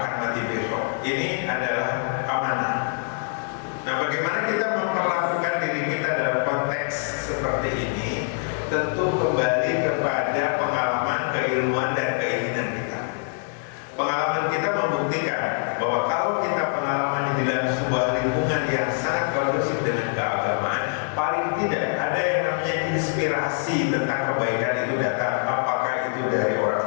mati besok. Ini adalah amanah. Nah, bagaimana kita memperlakukan diri kita dalam konteks seperti ini? Tentu kembali kepada pengalaman, keilmuan, dan keinginan kita. Pengalaman kita membuktikan bahwa kalau kita pengalaman di dalam sebuah lingkungan yang sangat kondusif dengan keagamaan, paling tidak ada yang namanya inspirasi tentang kebaikan itu datang. Apakah itu dari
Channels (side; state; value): right; silent; 62 dB below the other